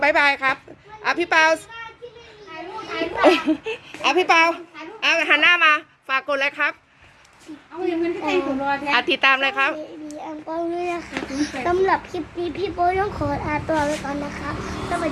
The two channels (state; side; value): identical; both; correlation 1.00